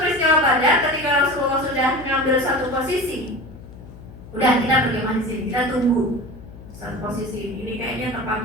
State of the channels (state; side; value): noise; left; hum, 17 dB below the sound